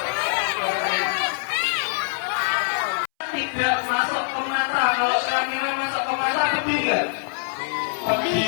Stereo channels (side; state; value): right; silent; 63 dB below the other